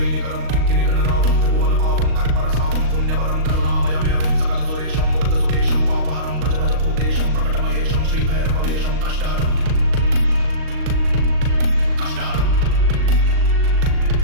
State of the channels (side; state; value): left; late; 38 ms